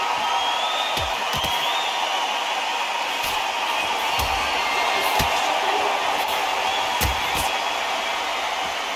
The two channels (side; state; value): both; identical; correlation 1.00